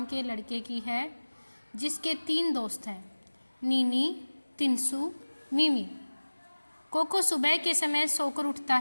के लड़के की है जिसके 3 दोस्त हैं, नीनी, तिनसु, मिमी। कोको सुबह के समय सोकर उठता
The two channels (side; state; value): both; inverted; correlation -1.00